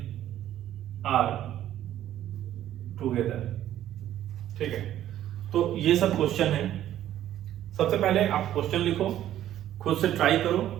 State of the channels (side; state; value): left; quieter; 12.2 dB